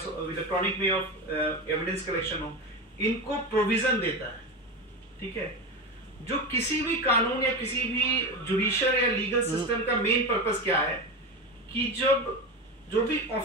electronic way of evidence collection हो, इनको प्रोविजन देता है, ठीक है। जो किसी भी कानून या किसी भी जुडिशियल या लीगल सिस्टम का मेन पर्पस क्या है कि जब जो भी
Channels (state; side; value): normal; both; correlation 0.20